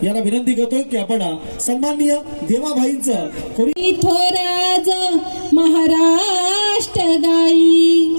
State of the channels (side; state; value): both; inverted; correlation -1.00